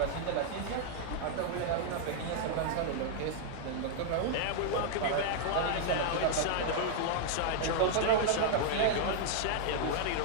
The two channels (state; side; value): different; both; correlation -0.01